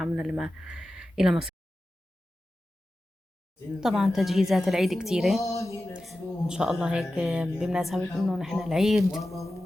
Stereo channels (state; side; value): normal; both; correlation 0.94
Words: لما إلى مصر. طبعا تجهيزات العيد كتيرة إن شاء الله. هيك بمناسبة إنه نحن العيد